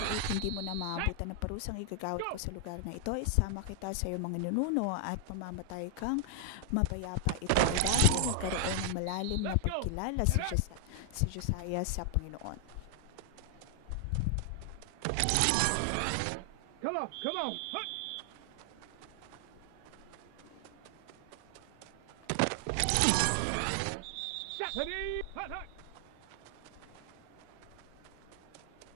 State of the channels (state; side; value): different; both; correlation 0.00